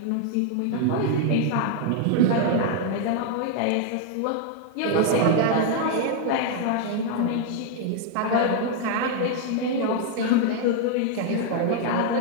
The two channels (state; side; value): different; both; correlation 0.00